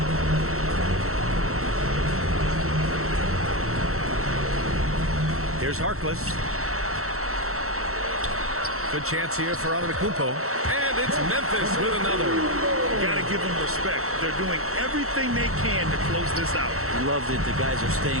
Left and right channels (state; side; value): late; left; 0.63 ms